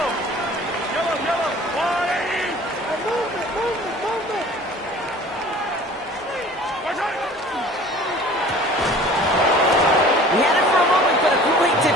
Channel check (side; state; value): both; normal; correlation 0.46